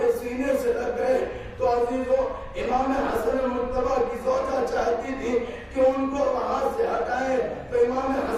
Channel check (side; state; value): both; identical; correlation 1.00